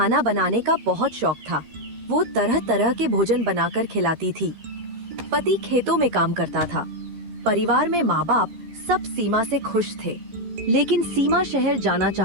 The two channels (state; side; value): late; left; 13 ms